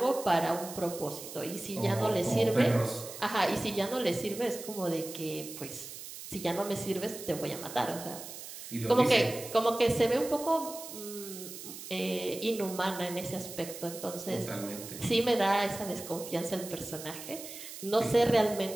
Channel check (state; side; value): noise; right; hiss, 12 dB below the sound